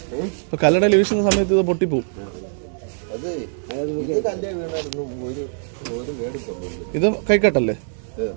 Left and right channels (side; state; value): left; silent; 57 dB below the other